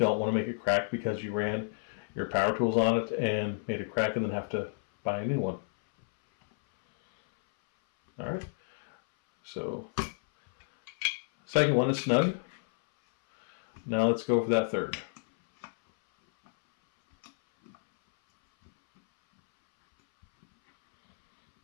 want to make it crack because you ran your power tools on it and made it crack and then have to buy a new one. Alright, so second one is snug. Now let's go for that third.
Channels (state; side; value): silent; right; 58 dB below the other